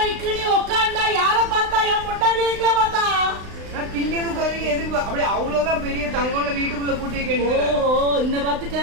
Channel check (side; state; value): left; late; 35 ms